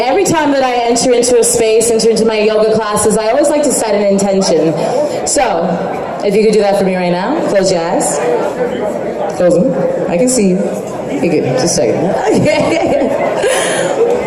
time that I enter into a space, enter into my yoga classes, I always like to set an intention. So, if you could do that for me right now, close your eyes. Close them. I can see you. Okay, good. Just a second.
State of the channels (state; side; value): identical; both; correlation 1.00